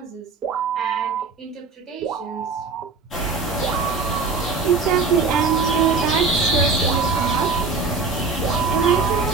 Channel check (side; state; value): left; quieter; 4.4 dB